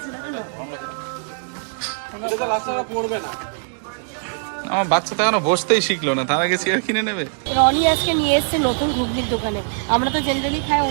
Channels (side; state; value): left; silent; 64 dB below the other